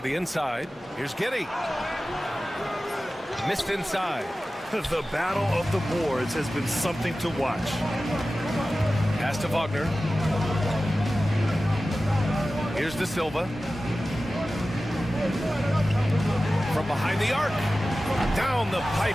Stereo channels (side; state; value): both; normal; correlation 0.95